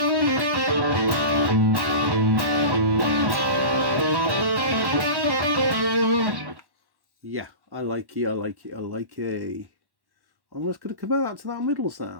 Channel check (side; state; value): left; late; 1.1 ms